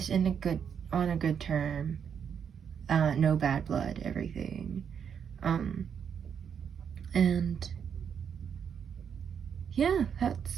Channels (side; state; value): left; quieter; 7.5 dB